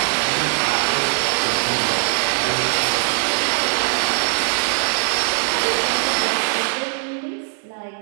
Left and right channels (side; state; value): left; silent; 65 dB below the other